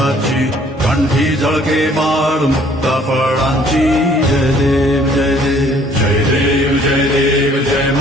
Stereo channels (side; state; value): both; normal; correlation 0.58